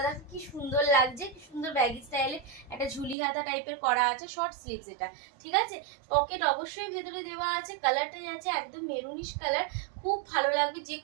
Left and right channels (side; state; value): left; drops out; at 3.2 s